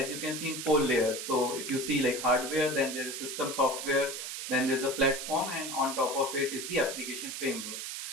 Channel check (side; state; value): right; noise; hiss, 6 dB below the sound